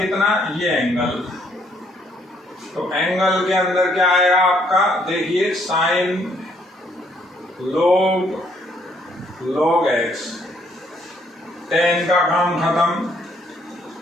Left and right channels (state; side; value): normal; both; correlation 0.68